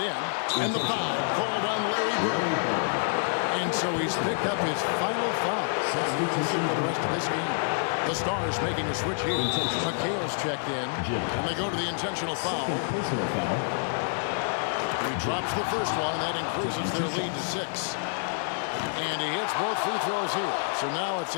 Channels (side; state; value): right; silent; digital silence